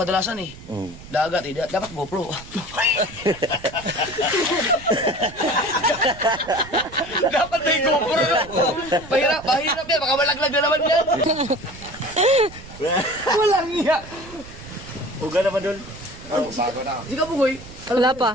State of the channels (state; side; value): noise; right; rumble, 17 dB below the sound